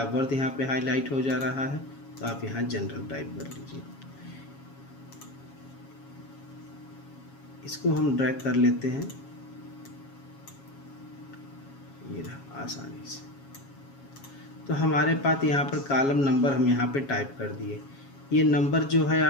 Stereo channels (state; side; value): late; right; 7.3 ms